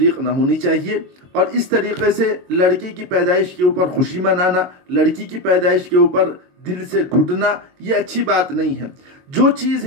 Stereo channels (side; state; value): left; late; 22 ms